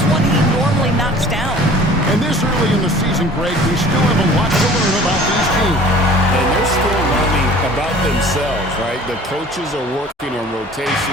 one he normally knocks down. And this early in the season, Greg, we still have a lot to learn about these teams. And they're still learning about themselves, right? The coaches are working on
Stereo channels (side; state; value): both; normal; correlation 0.47